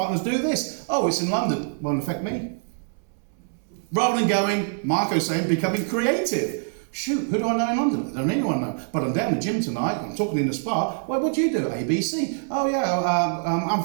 do this. Oh, it's in London, won't affect me. Rather than going, Marco's saying, becoming creative. Shoot, who do I know in London? I don't anyone know. But I'm down the gym tonight, I'm talking in the spa. Well, what do you do? ABC. Oh yeah, I'm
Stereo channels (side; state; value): left; silent; 62 dB below the other